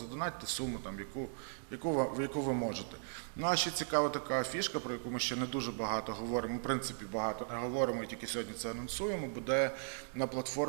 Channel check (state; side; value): silent; left; digital silence